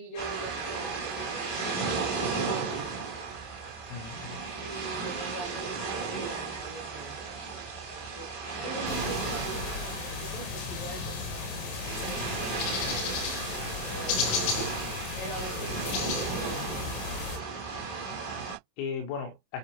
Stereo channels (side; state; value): right; late; 27 ms